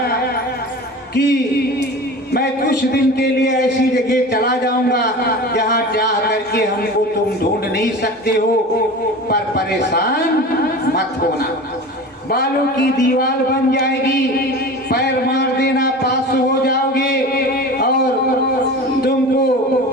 कि मैं कुछ दिन के लिए ऐसी जगह चला जाऊंगा जहां चाह करके हमको तुम ढूंढ नहीं सकते हो, पर परेशान मत होना। बालों की दीवार बन जाएगी, पैर मार देना पास हो जाओगे और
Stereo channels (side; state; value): both; normal; correlation 0.34